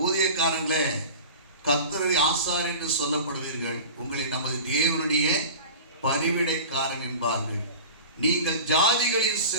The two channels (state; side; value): inverted; both; correlation -0.35